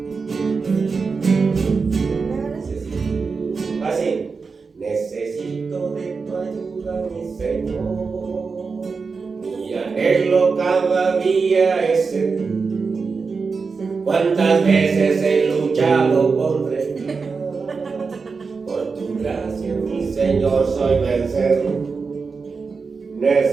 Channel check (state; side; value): quieter; left; 4.8 dB